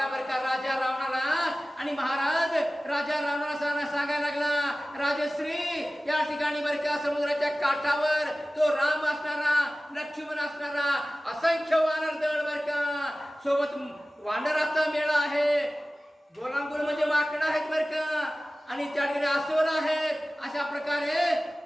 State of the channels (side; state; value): both; normal; correlation 0.97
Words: बरं का राजा रावणाला. आणि महाराज राजा रावणाला सांगायला लागला, राजश्री या ठिकाणी बरं का समुद्राच्या काठावर तो राम असणारा, लक्ष्मण असणारा, असंख्य वानर दळ बरं का, सोबत वानराचा मेळा आहे, गोलांगुल म्हणजे माकडं आहेत बरं का, आणि त्या ठिकाणी अस्वल आहेत. अशा प्रकारे